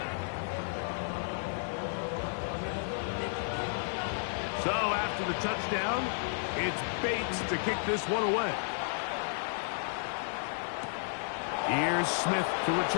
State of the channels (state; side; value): silent; right; digital silence